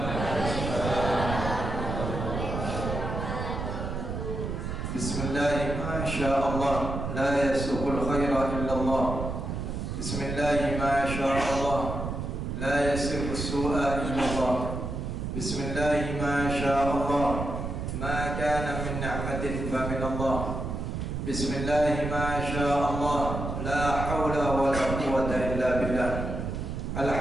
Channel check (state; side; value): noise; right; rumble, 4 dB below the sound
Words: Bismillah, masyaallah, la yasuqul khaira illallah. Bismillah, masyaallah, la yasiqus su'a illallah. Bismillah, masyaallah, ma kana min ni'matin fa min Allah. Bismillah, masyaallah, la hawla wa la quwwata illa billah.